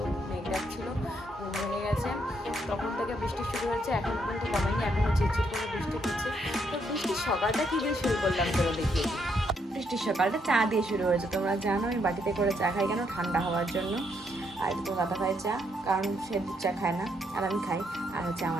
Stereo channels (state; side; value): normal; both; correlation 0.75